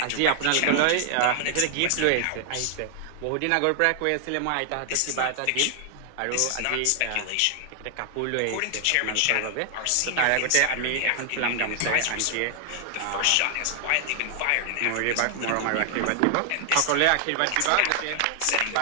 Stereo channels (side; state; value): both; different; correlation 0.00